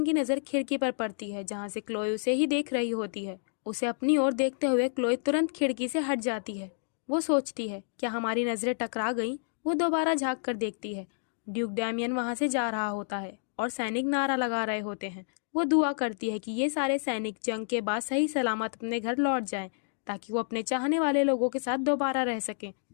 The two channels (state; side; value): silent; right; digital silence